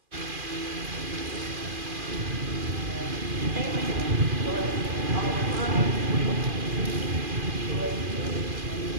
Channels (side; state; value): left; late; 2.4 ms